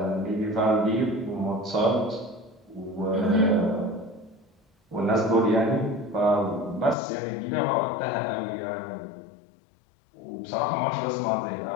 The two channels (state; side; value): drops out; right; at 7.0 s